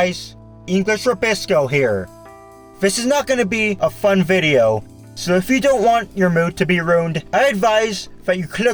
English Rabisco here. This is not going to be a fun video, so if you don't want your mood to be ruined, I advise that you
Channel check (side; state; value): both; identical; correlation 1.00